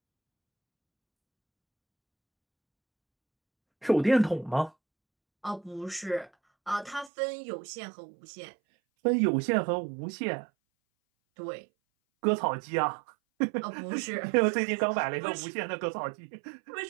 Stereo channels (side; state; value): left; drops out; at 7.1 s